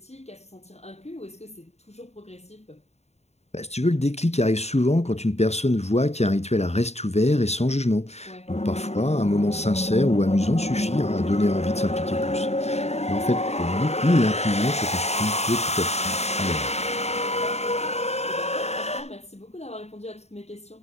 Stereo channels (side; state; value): right; late; 0.31 ms